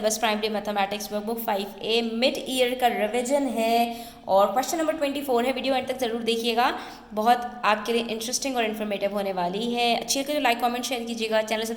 Primary Mathematics Workbook 5A. Mid year का रिवीजन है और क्वेश्चन नंबर 24 है. वीडियो एंड तक ज़रूर देखिएगा, बहुत आपके लिए इंटरेस्टिंग और इन्फॉर्मेटिव होने वाली है. अच्छी लगे तो लाइक कमेंट शेयर कीजिएगा. चैनल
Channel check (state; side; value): identical; both; correlation 1.00